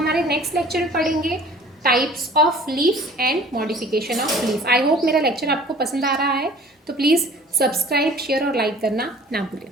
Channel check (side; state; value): both; normal; correlation 0.49